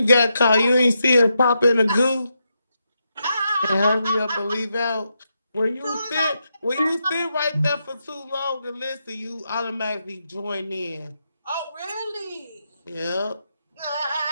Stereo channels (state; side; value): inverted; both; correlation -0.84